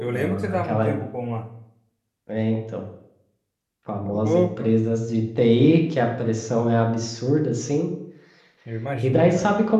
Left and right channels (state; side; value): identical; both; correlation 1.00